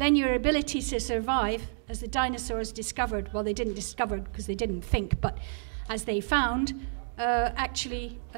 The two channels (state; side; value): silent; left; digital silence